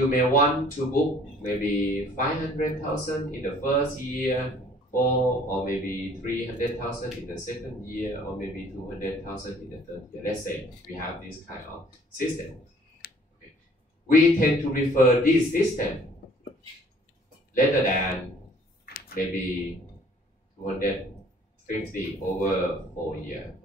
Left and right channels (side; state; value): both; normal; correlation 0.56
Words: may want to book maybe 500,000 in the first year, or maybe 300,000 in the second year, or maybe 200,000 in the third year. Let's say we have this kind of system. Okay. We tend to prefer this system rather than maybe 250 over 4 years.